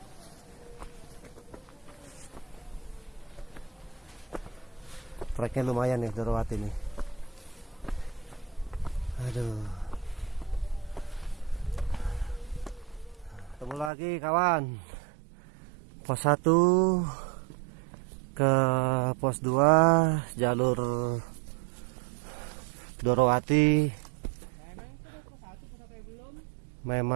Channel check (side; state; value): left; drops out; at 13.9 s